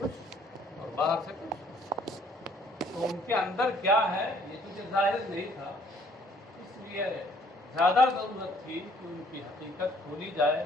اور باہر سے کچھ. تو ان کے اندر کیا ہے یہ تو ظاہر نہیں تھا، اس لیے زیادہ ضرورت تھی کہ ان کی حقیقت کھولی جائے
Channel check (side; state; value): both; normal; correlation 0.61